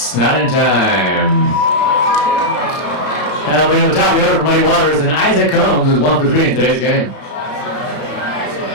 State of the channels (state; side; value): late; right; 33 ms